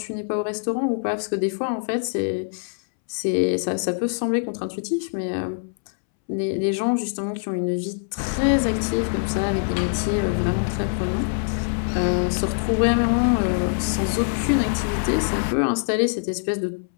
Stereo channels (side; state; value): right; silent; 63 dB below the other